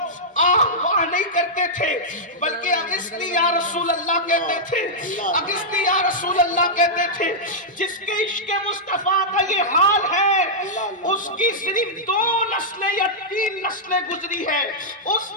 آہ واہ نہیں کرتے تھے بلکہ اغثنی یا رسول اللہ کہتے تھے, اغثنی یا رسول اللہ کہتے تھے. جس کے عشق مصطفیٰ کا یہ حال ہے اس کی صرف 2 نسلیں یا 3 نسلیں گزری ہے, اس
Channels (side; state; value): both; normal; correlation -0.09